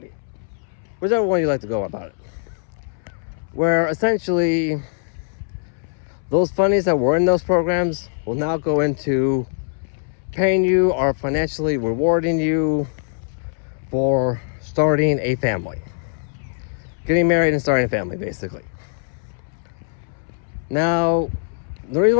Whichever one you like to go about it. Where essentially, those fundings that were in those programs will now go into paying you or financially rewarding you for starting a family. Getting married and starting a family, basically. Now, the reason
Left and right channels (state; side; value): silent; right; 64 dB below the other